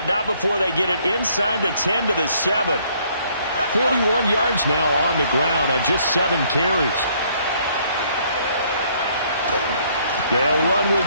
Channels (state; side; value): inverted; both; correlation -0.64